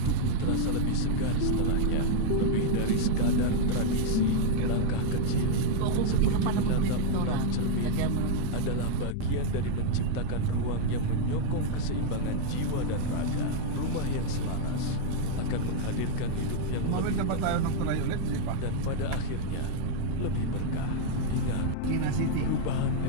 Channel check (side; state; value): both; different; correlation -0.01